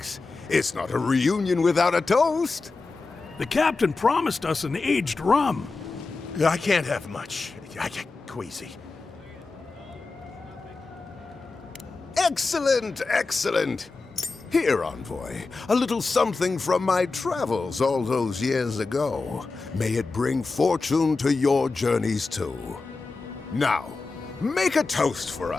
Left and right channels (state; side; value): quieter; right; 3.9 dB